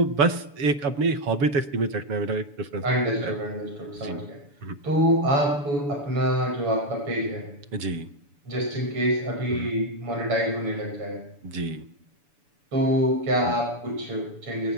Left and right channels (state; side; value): late; left; 7.0 ms